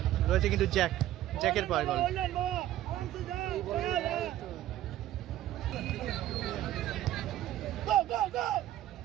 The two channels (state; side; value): quieter; left; 13.5 dB